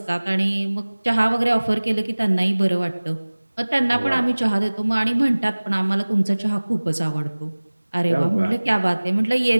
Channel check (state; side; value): inverted; both; correlation -1.00